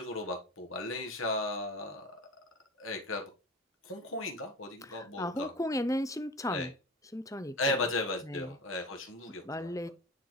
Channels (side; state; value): both; normal; correlation 0.31